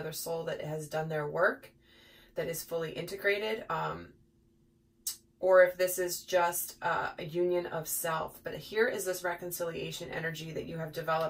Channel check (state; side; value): identical; both; correlation 1.00